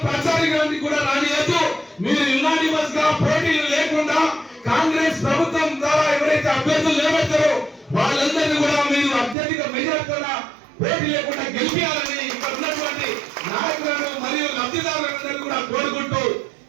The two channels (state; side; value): drops out; left; at 9.3 s